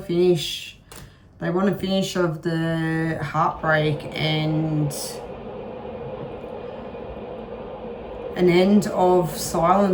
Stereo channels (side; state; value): both; identical; correlation 1.00